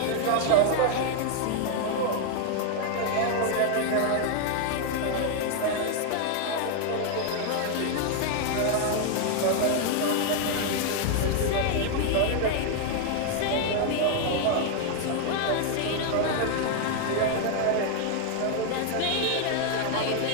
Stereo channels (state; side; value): different; both; correlation 0.00